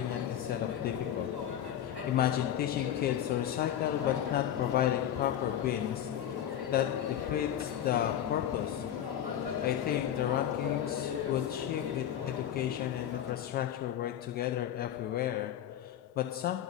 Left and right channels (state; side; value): quieter; right; 10.6 dB